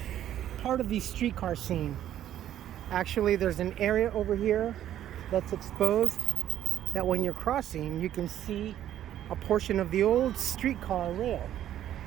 part of the streetcar scene. Actually, there's an area over here that's exposed that when you're crossing, you can see a portion of the old streetcar rail.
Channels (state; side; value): quieter; left; 11.5 dB